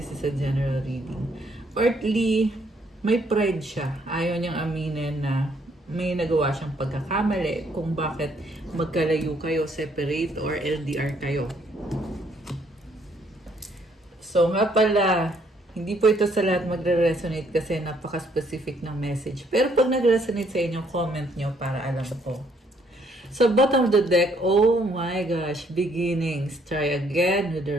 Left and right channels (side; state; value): both; normal; correlation 0.68